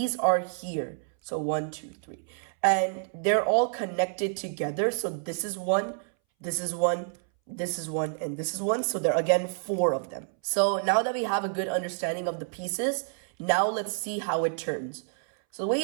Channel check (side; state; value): left; silent; 59 dB below the other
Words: are here. So 1, 2, 3, and they're all connected together. So this is 1, this is 1, this is 1, and this is 1. So there are again 4 of them. So now that we have a good understanding of the pieces, now let's see how it turns. So the way